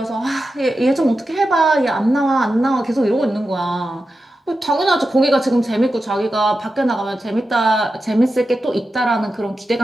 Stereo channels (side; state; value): both; normal; correlation 0.91